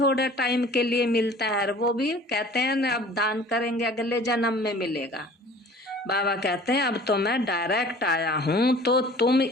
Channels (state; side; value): normal; both; correlation 0.47